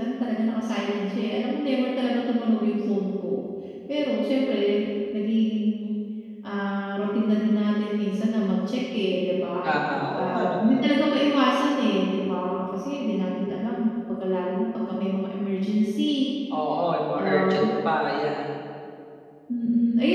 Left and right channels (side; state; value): both; identical; correlation 1.00